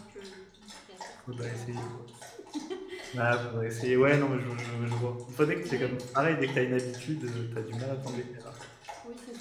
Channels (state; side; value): identical; both; correlation 1.00